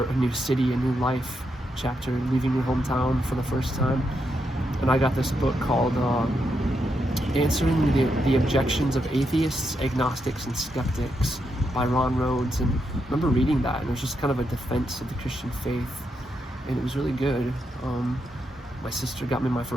a new city, a new life chapter, leaving your hometown for the first time. And I got this book called Answering the Objections of Atheists, Agnostics, and Skeptics by Ron Rhodes. And I remember reading that, and it was just kind of a defense of the Christian faith, and it was really good. My sister got me my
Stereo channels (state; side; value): normal; both; correlation 0.82